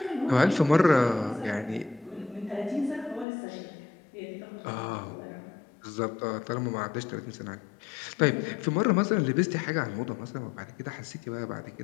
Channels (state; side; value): drops out; right; at 3.2 s